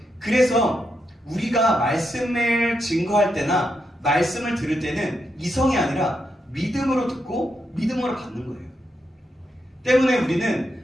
그래서 우리가 말씀을 증거할 때나 말씀을 들을 때는 이성이 아니라 믿음으로 듣고 믿음으로 받는 거예요. 때문에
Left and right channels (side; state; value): both; normal; correlation 0.83